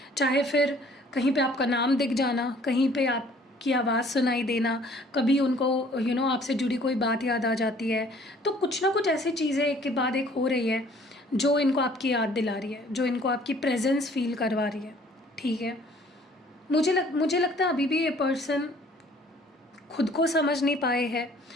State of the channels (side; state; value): both; normal; correlation 0.56